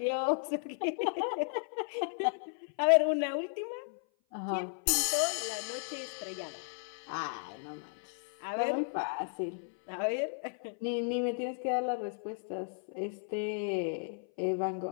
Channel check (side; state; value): right; silent; 55 dB below the other